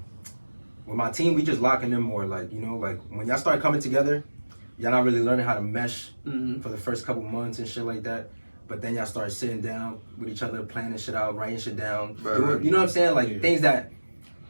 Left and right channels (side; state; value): both; inverted; correlation -1.00